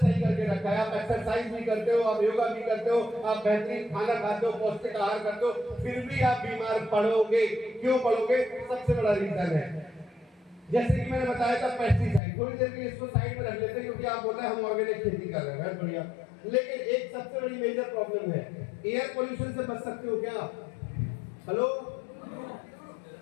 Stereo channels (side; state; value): right; drops out; at 12.2 s